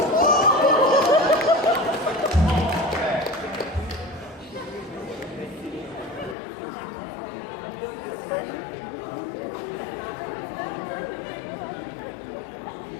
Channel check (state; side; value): drops out; right; at 6.4 s